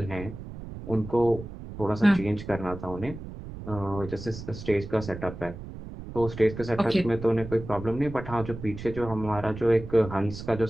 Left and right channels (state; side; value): noise; right; rumble, 11 dB below the sound